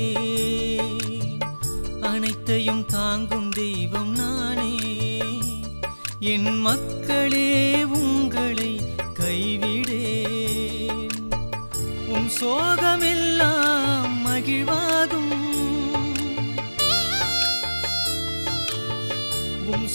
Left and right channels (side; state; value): both; inverted; correlation -1.00